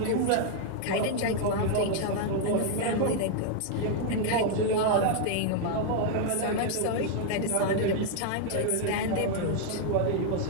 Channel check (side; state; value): both; different; correlation 0.00